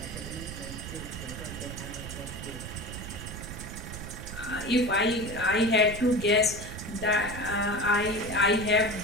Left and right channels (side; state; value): right; noise; rumble, 9 dB below the sound